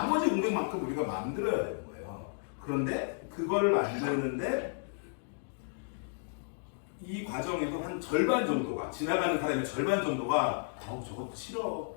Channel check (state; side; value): silent; right; digital silence